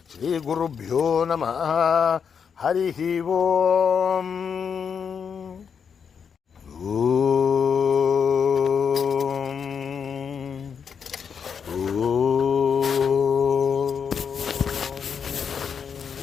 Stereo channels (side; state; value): right; quieter; 6.8 dB